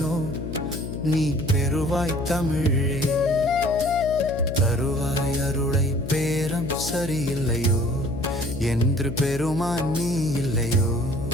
நீ பெறுவாய் தமிழே. தருவாய் அருளை பேரம் சரியில்லையோ என்று பெருமான் நீ இல்லையோ.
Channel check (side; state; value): left; noise; hum, 8 dB below the sound